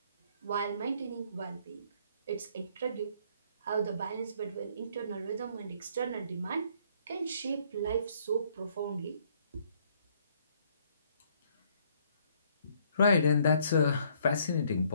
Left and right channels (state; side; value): inverted; both; correlation -0.65